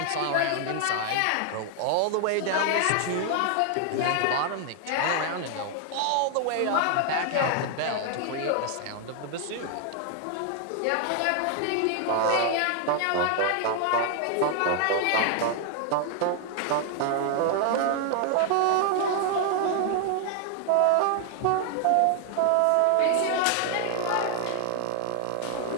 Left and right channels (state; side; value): different; both; correlation 0.00